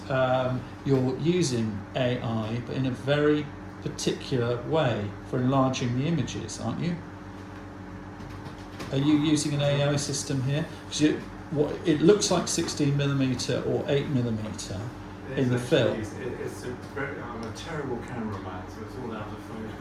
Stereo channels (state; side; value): identical; both; correlation 1.00